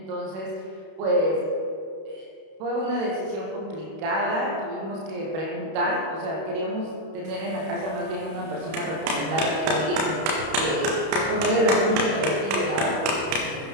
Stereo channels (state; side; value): late; left; 31 ms